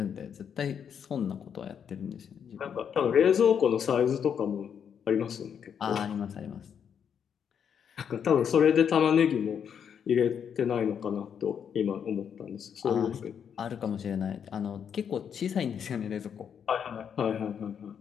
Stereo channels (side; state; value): right; quieter; 7.8 dB